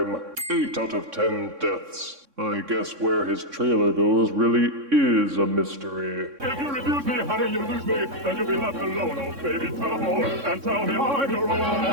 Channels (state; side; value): late; left; 3.6 ms